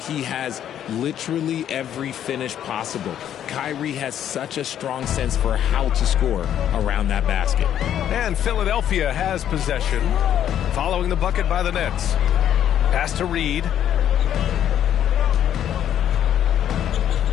has literally every finish possible. Kyrie has such a strong sense for how to score around that basket. And Philadelphia has possession. Following the bucket by the Nets. Pass to Reed.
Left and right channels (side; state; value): right; quieter; 10.3 dB